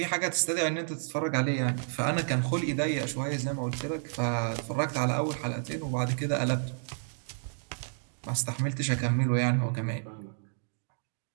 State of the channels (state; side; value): silent; left; digital silence